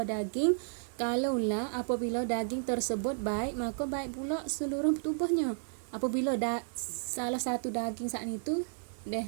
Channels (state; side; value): silent; left; digital silence